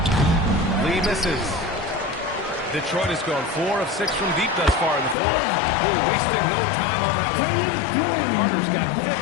Lee misses. Detroit has gone 4 of 6 from deep thus far in the fourth. Oh, wasted no time on that one. Carter's got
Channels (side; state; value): right; drops out; at 5.2 s